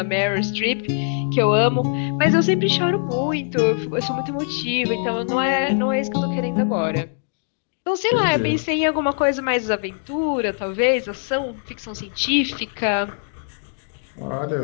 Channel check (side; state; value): right; silent; digital silence